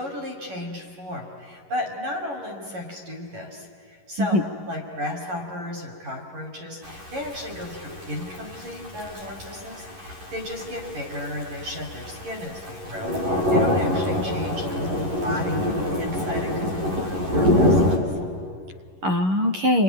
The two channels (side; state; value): left; late; 11 ms